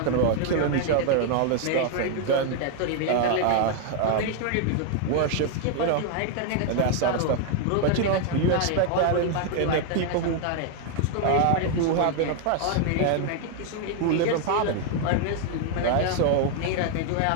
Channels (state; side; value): different; both; correlation 0.00